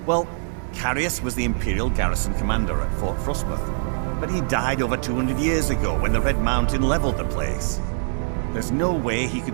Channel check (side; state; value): left; silent; digital silence